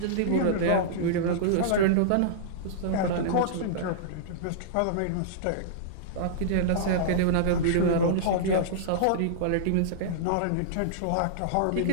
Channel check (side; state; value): both; different; correlation -0.02